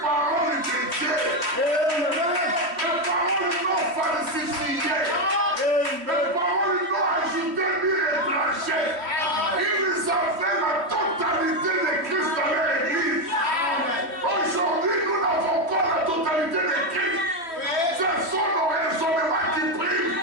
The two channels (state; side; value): late; left; 3.1 ms